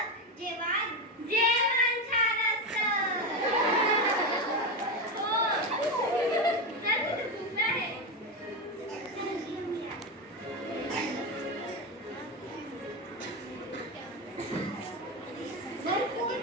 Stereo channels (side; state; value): both; normal; correlation 0.14